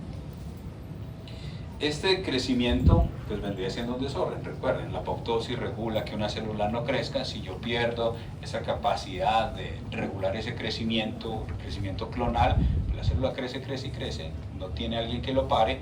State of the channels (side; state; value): both; identical; correlation 1.00